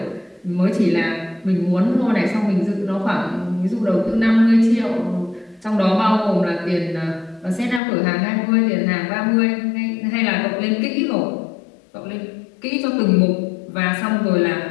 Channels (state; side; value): drops out; right; at 7.8 s